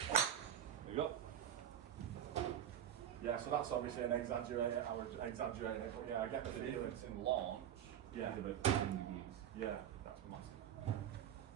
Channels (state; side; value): quieter; left; 10.1 dB